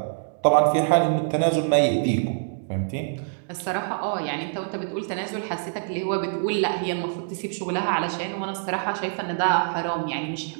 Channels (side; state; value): left; silent; digital silence